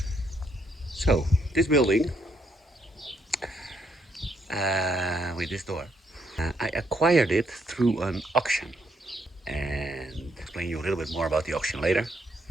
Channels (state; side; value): normal; both; correlation 0.74